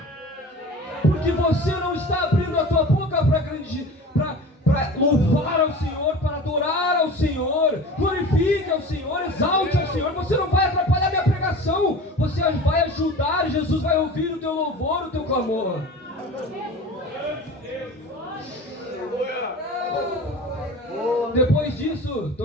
Porque você não está abrindo a tua boca para louvar ao Senhor, para adorar ao Senhor. Glorifique ao Senhor, exalte ao Senhor. Você não vai atrapalhar minha pregação. Você vai ajudar. Jesus vai ouvir o teu louvor, o teu clamor. Depois disso,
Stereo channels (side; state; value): both; normal; correlation 0.37